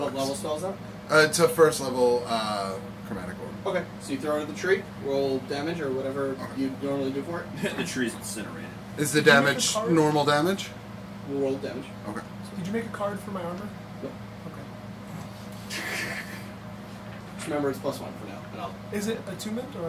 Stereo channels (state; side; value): identical; both; correlation 1.00